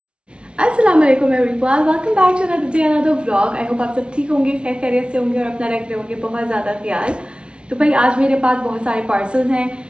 Assalamualaikum everyone, welcome back to another day, another vlog. I hope आप सब ठीक होंगे, खैर खैरियत से होंगे और अपना रख रहे होंगे बहुत ज़्यादा ख्याल। तो भाई आज मेरे पास बहुत सारे पार्सल्स हैं।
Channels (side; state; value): left; late; 0.058 ms